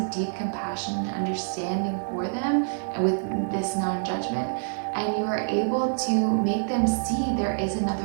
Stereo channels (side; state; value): left; silent; digital silence